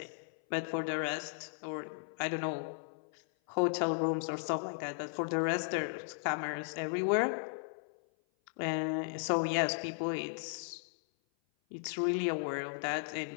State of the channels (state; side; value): silent; right; 54 dB below the other